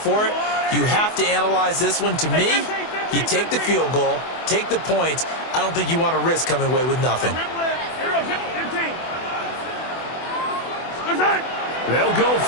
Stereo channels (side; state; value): right; late; 24 ms